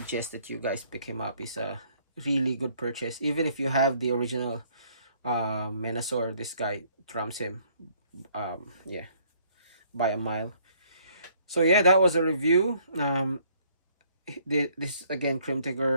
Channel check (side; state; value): both; inverted; correlation -0.63